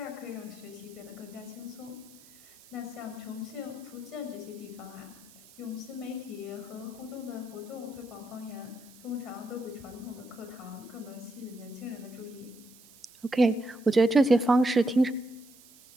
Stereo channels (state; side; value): noise; right; hiss, 22 dB below the sound